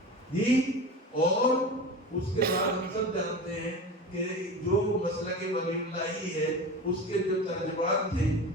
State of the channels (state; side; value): normal; both; correlation 0.30